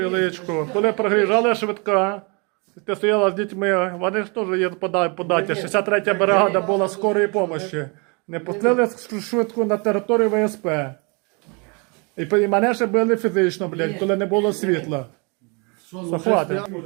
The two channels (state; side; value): quieter; left; 31.9 dB